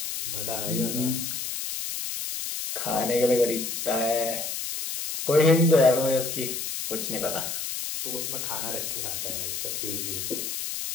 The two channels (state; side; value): noise; left; hiss, 4 dB below the sound